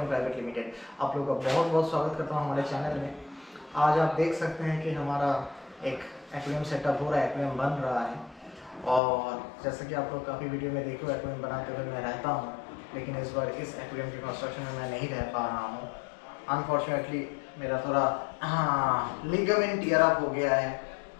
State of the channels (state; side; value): drops out; right; at 9.0 s